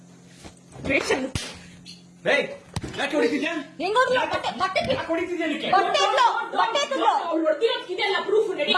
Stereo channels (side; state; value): both; identical; correlation 1.00